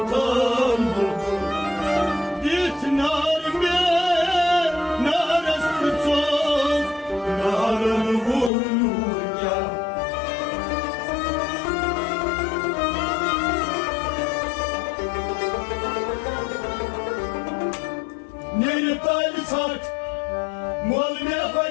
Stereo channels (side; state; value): right; drops out; at 8.5 s